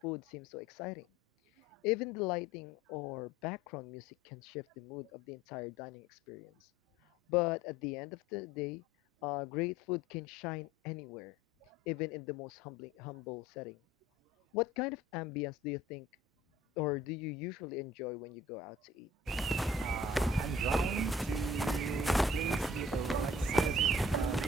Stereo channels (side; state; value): both; normal; correlation 0.53